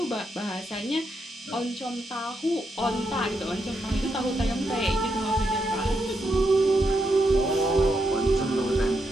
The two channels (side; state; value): both; normal; correlation 0.82